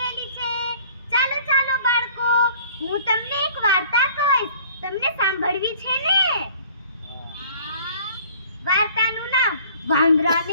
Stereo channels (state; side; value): inverted; both; correlation -0.52